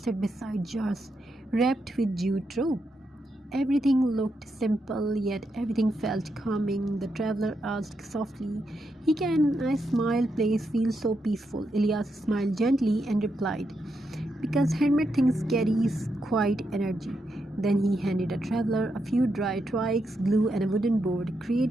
beside jars wrapped with jute rope. Everything looked simple, yet everything felt calming. The traveler asked softly, "Can a small place feel so peaceful?" Elias smiled gently and replied, "Because handmade things carries quiet energy." Then he handed a traveler a few dry twigs, glue, and a wooden board,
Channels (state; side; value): normal; both; correlation 0.83